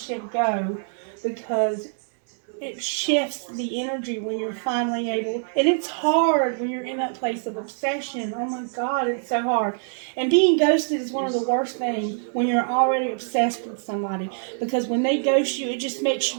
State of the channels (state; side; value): silent; left; digital silence